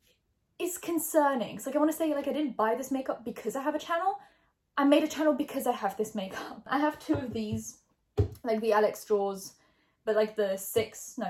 is concerning. It's like, I want to say like I didn't buy this makeup because I have a channel. I made a channel because I have this makeup. I have two of these, like the Alex drawers, but like the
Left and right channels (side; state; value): both; identical; correlation 1.00